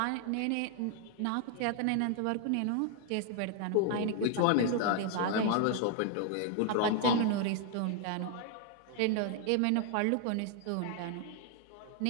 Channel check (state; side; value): different; both; correlation 0.00